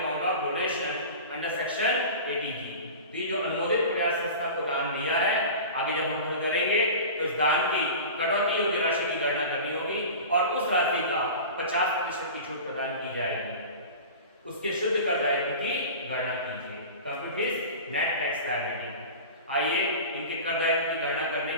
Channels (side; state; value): both; inverted; correlation -0.34